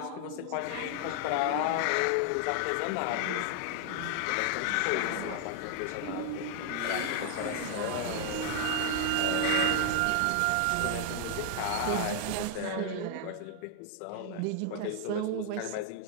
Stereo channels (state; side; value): different; both; correlation 0.00